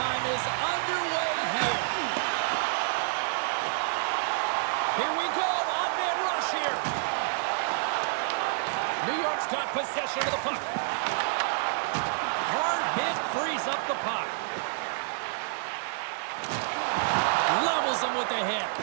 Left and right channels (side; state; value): left; silent; digital silence